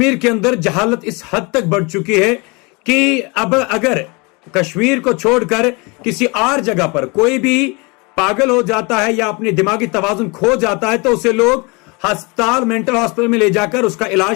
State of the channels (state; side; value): quieter; right; 28.6 dB